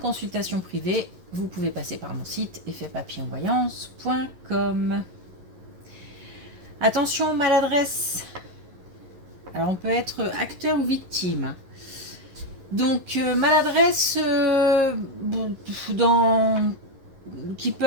privée, vous pouvez passer par mon site effetpapillonvoyance.com. Attention, maladresse. Alors on peut être acteur ou victime. Donc maladresse qui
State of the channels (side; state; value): left; late; 11 ms